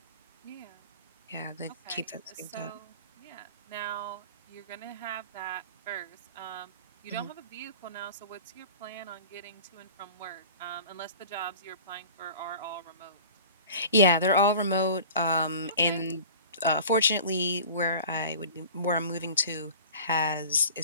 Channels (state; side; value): inverted; both; correlation -0.41